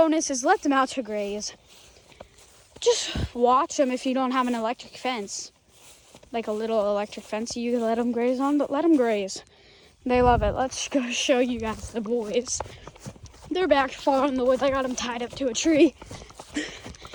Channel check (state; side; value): identical; both; correlation 1.00